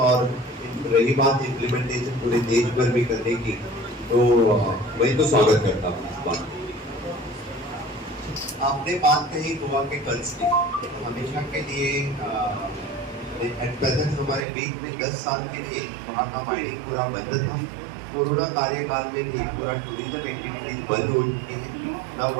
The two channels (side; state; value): left; drops out; at 14.4 s